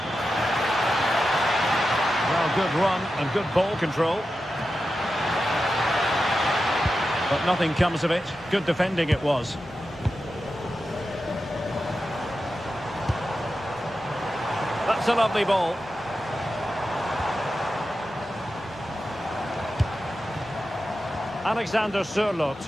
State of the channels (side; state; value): both; normal; correlation 0.91